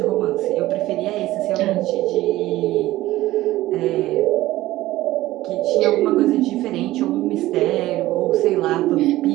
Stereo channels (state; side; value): quieter; left; 16.3 dB